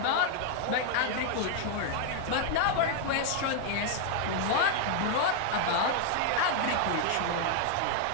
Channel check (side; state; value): both; different; correlation 0.00